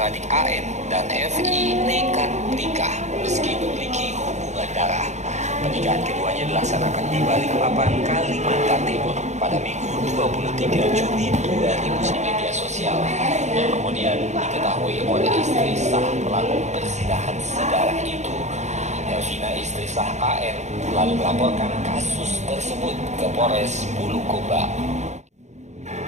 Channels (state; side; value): late; left; 0.33 ms